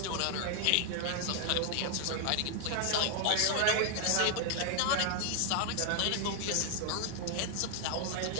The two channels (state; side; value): different; both; correlation 0.00